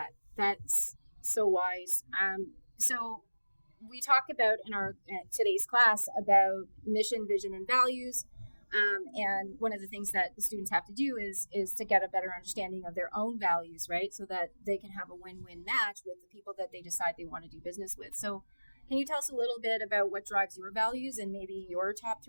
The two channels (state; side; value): inverted; both; correlation -1.00